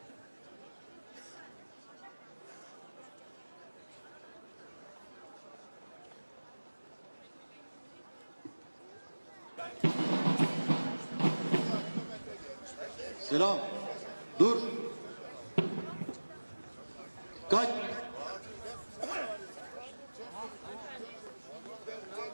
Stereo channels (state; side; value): inverted; both; correlation -1.00